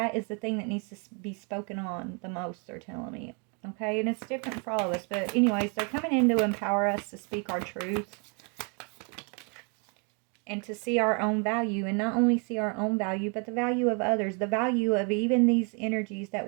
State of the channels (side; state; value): left; quieter; 36.6 dB